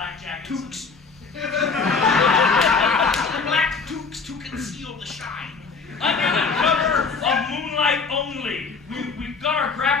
jackets. Toques. Black toques to conceal the shine. Under the cover of moonlight only, we got our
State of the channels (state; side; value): quieter; right; 4.8 dB